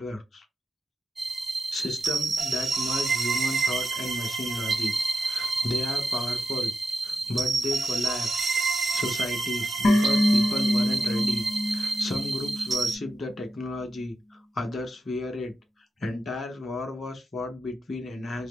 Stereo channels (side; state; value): both; normal; correlation 0.89